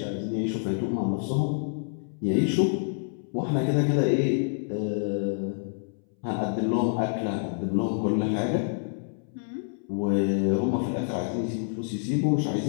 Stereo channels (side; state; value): right; silent; 60 dB below the other